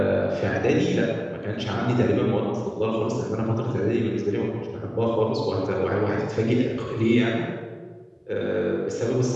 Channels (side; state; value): both; identical; correlation 1.00